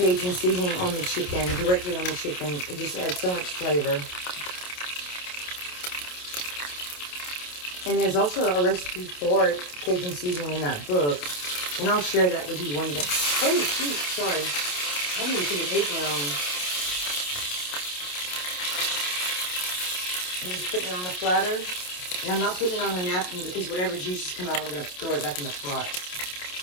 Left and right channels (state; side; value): late; right; 28 ms